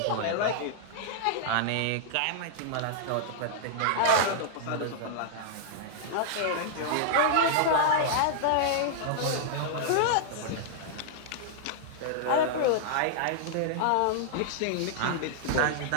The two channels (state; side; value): different; both; correlation -0.01